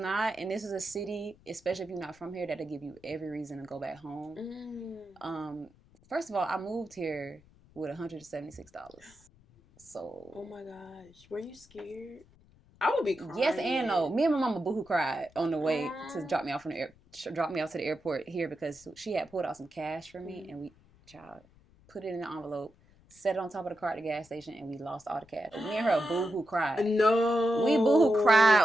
And this is a city, especially if you're not from here, that'll give you every reason to go back home. First of all, I moved here with $176. So. Oh my gosh. Were you scared? I would be crying. Yes and no. Me and my mama boohoo cried on the way to drop me off to the airport here because she had pulled out some cash for me and we put it in the envelope, set it on top of the car at the gas station, and we lost all the cash. Me and her boohoo cried. No. We boohoo cried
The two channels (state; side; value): noise; left; rumble, 28 dB below the sound